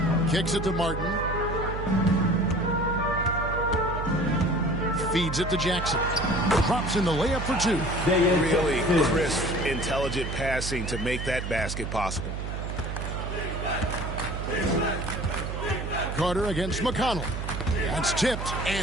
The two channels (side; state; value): right; noise; hum, 5 dB below the sound